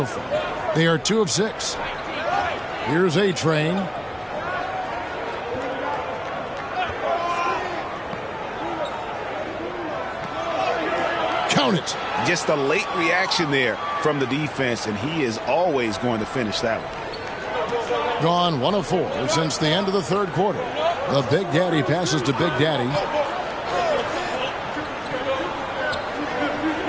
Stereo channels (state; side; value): identical; both; correlation 1.00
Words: far. They are 2 of 6. Here's A-Train. Count it. Just a late reaction there from the defense, and he is always going to finish that one. Gone 1 of 4 since the end of the third quarter. The Big Daddy passes to Big Daddy.